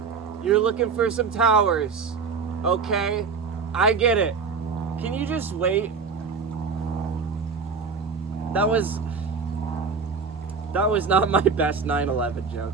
You're looking for some towers. Okay? I get it. Can you just wait? That was not my best 9/11 joke.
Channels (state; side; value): quieter; left; 5.2 dB